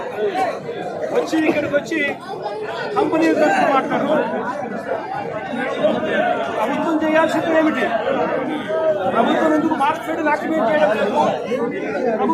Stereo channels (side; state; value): both; identical; correlation 1.00